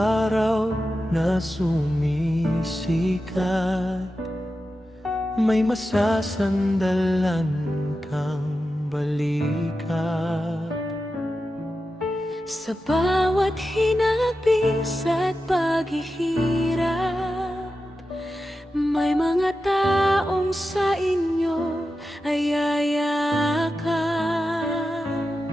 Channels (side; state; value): both; normal; correlation 0.91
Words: na sumisikat, may masasandalan kang balikat. Sa bawat hinapis at paghihirap, may mga taong sa inyo ay yayakap.